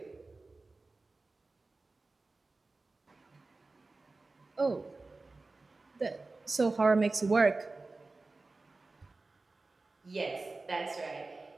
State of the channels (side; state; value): left; quieter; 3.5 dB